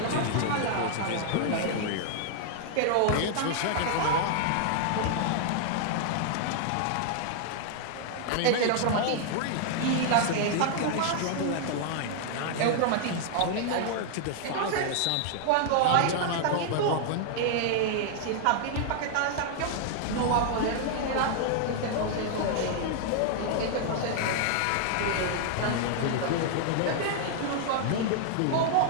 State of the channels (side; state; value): both; different; correlation -0.01